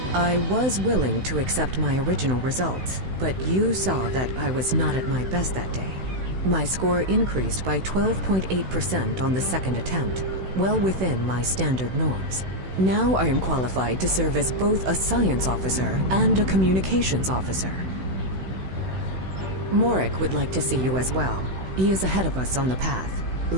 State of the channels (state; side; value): late; left; 16 ms